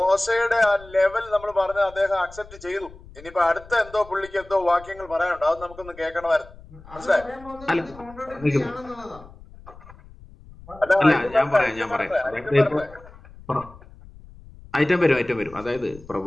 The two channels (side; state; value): left; noise; rumble, 20 dB below the sound